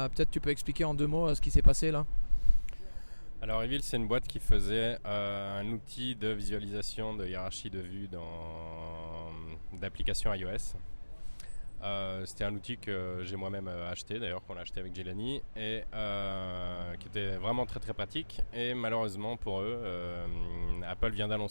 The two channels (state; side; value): inverted; both; correlation -1.00